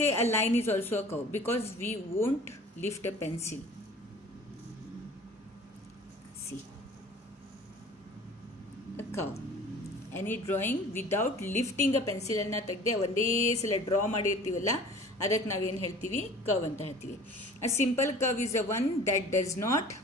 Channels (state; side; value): normal; both; correlation 0.45